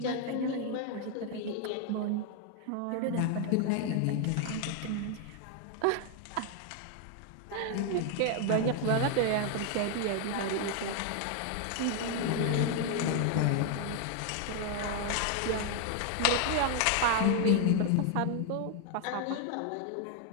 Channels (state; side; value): different; both; correlation 0.00